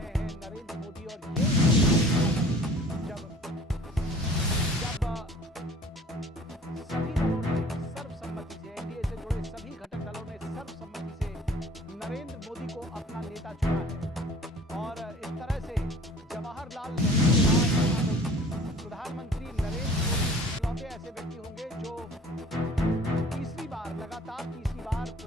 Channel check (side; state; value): both; normal; correlation 0.48